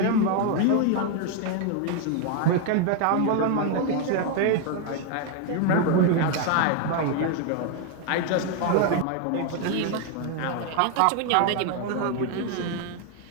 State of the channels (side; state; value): both; different; correlation 0.00